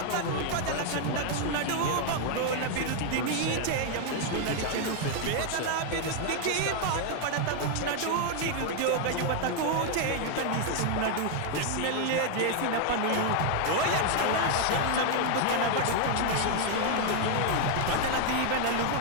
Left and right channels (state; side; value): different; both; correlation 0.00